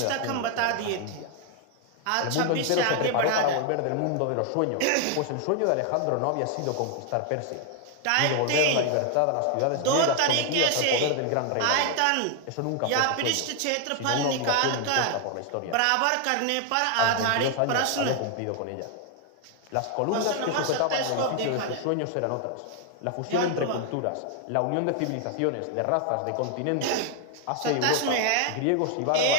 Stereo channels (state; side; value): different; both; correlation 0.00